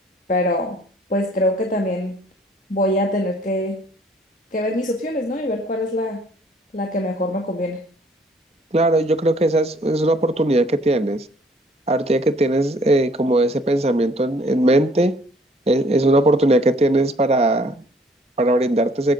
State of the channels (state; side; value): normal; both; correlation 0.59